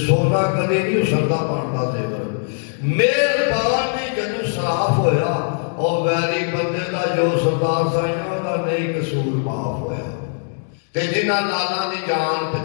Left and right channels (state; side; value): silent; right; digital silence